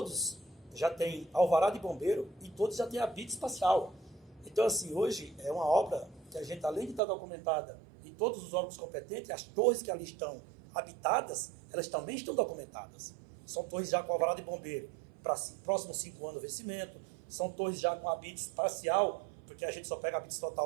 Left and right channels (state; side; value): drops out; left; at 7.0 s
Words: já têm alvará de bombeiro e todos já têm habite espacial. Então, assim, hoje é uma obra que a gente, além de estar documentada e todos os órgãos competentes, as torres que ali estão habitadas, elas também estão documentadas. São torres já com alvará de bombeiro. para próximos 5 anos o vencimento. São torres já com habites parcial, porque a gente só pega habites